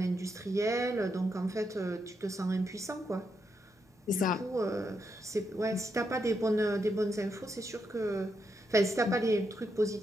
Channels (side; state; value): both; normal; correlation 0.82